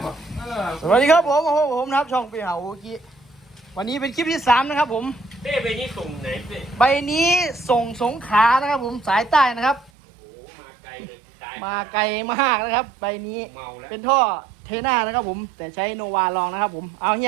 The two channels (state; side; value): drops out; left; at 9.9 s